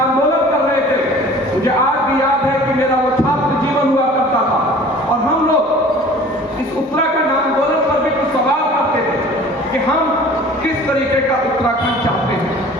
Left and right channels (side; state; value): both; normal; correlation 0.46